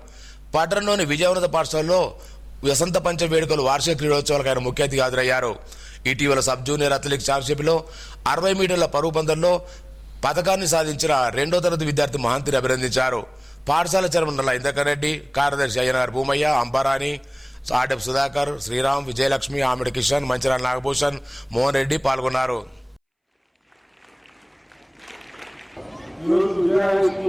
పట్టణంలోని విజయవంత పాఠశాలలో వసంత పంచమి వేడుకలు వార్షిక క్రీడోత్సవాలకు ఆయన ముఖ్య అతిథిగా హాజరయ్యారు. ఇటీవల సబ్ జూనియర్ అథ్లెటిక్స్ ఛాంపియన్షిప్లో 60 మీటర్ల పరుగు పందెంలో పథకాన్ని సాధించిన 2వ తరగతి విద్యార్థి మహంతిని అభినందించారు. పాఠశాల చైర్మన్ నల్ల ఇంద్రకర్ రెడ్డి, కార్యదర్శి అయ్యనార్ భూమయ్య, అంబారాణి, ఆర్డెఫ్ సుధాకర్, శ్రీరామ్, విజయలక్ష్మి, ఆమిడి కిషన్, మంచిరాల నాగభూషణ్, మోహన్ రెడ్డి పాల్గొన్నారు.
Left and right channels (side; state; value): both; identical; correlation 1.00